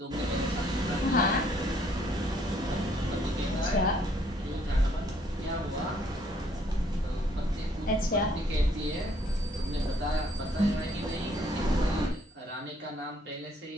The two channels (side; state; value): both; normal; correlation 0.65